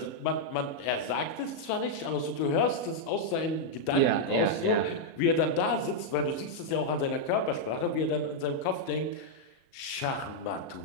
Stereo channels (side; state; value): right; late; 37 ms